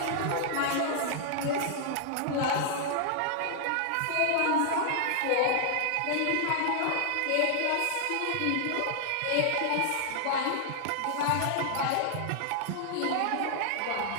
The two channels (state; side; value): different; both; correlation -0.01